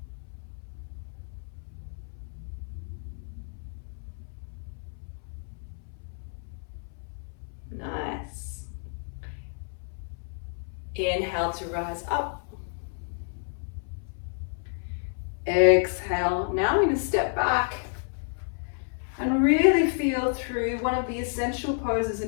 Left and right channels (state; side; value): silent; right; 58 dB below the other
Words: Nice. Inhale to rise up. Exhale. Now I'm going to step back and really feel through one of the essential poses